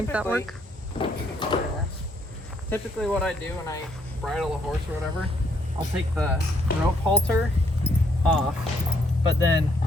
that work. Typically what I do when I bridle a horse or whatever, I'll take the rope halter off, but then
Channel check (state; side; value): normal; both; correlation 0.70